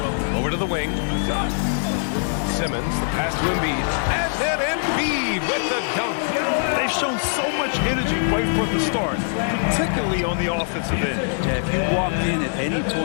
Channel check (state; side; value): silent; right; 64 dB below the other